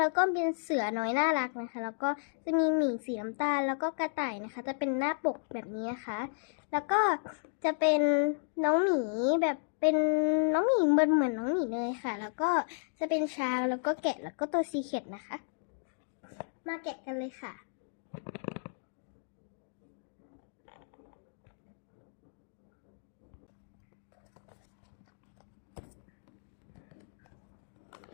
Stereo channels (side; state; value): right; silent; digital silence